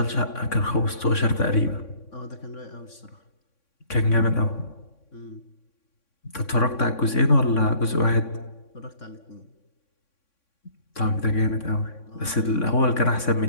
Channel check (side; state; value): right; late; 3.6 ms